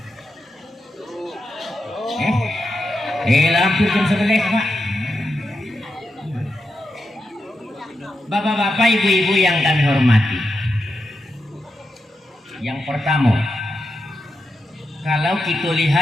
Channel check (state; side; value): normal; both; correlation 0.87